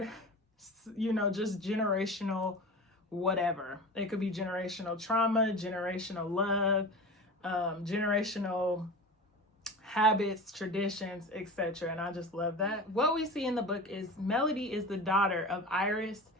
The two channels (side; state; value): both; normal; correlation 0.32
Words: just generational whatever. It could be generational trauma, generational love, generational habits, traditions, etc. And I just love that. What we see in the book is Melody is the daughter of Iris